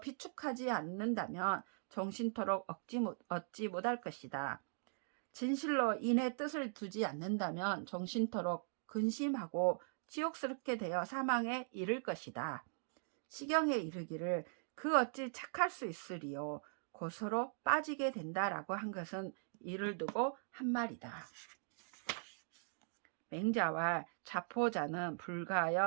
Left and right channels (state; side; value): silent; left; digital silence